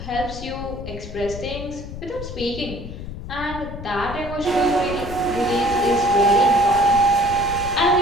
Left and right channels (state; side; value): noise; left; rumble, 10 dB below the sound